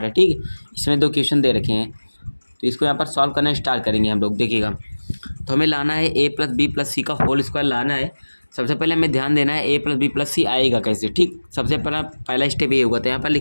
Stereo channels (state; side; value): inverted; both; correlation -1.00